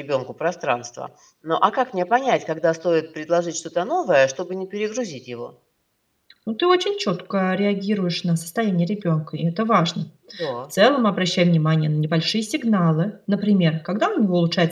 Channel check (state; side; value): identical; both; correlation 1.00